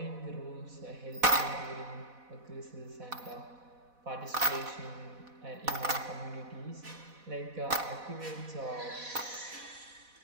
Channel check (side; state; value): left; late; 4.1 ms